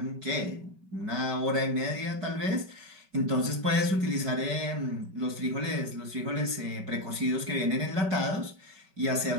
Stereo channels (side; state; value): left; late; 5.3 ms